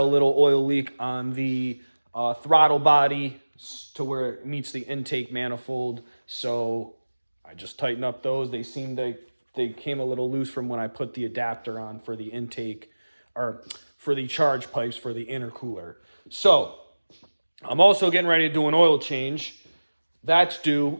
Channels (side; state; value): both; inverted; correlation -1.00